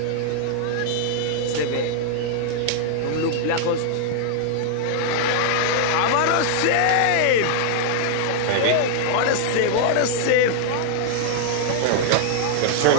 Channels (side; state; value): both; different; correlation -0.01